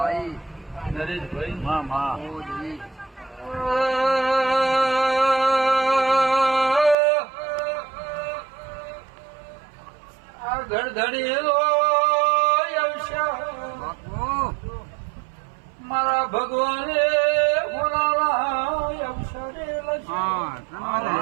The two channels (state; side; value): drops out; left; at 7.0 s